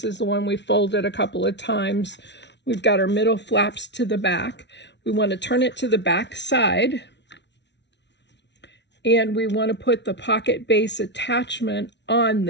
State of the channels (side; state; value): right; late; 0.51 ms